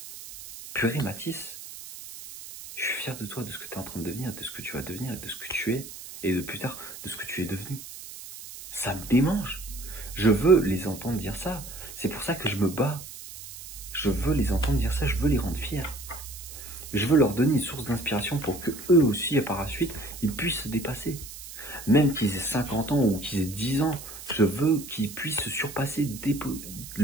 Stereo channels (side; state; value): right; noise; hiss, 13 dB below the sound